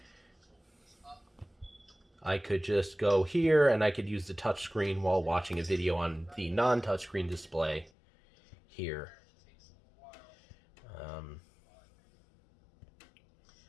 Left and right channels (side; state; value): right; drops out; at 7.9 s